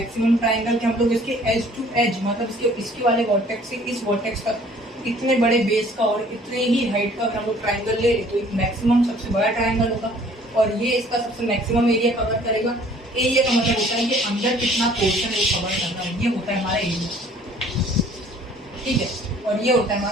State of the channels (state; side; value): normal; both; correlation 0.55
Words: ट्राइंगल, कि हम लोग इसके एज टू एज, मतलब इसके वाले वर्टेक्स से इस वर्टेक्स तक इतने बड़े बेस का और इतने ही हाइट का हम लोग ट्राइंगल ले तो एक मैक्सिमम सबसे बड़ा ट्राइंगल होगा। और ये इसका सबसे मैक्सिमम एरिया कवर करेगा। एरिया का मतलब होता है कि अंदर कितना पोर्शन है कवर करना है, ये होता है हमारा एरिया, ठीक है। और ये होता है